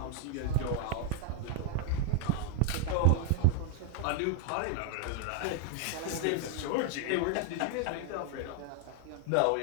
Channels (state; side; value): different; both; correlation 0.00